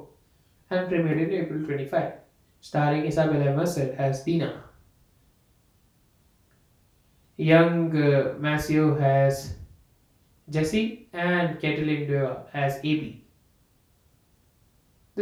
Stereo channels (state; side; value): identical; both; correlation 1.00